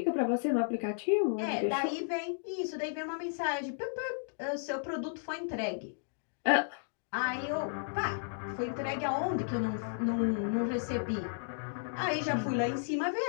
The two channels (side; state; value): right; silent; digital silence